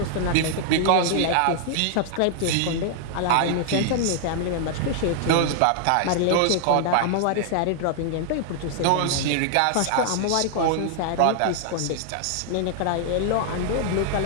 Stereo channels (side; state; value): both; different; correlation 0.00